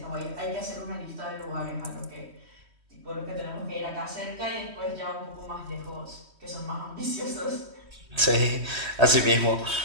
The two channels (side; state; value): left; late; 3.1 ms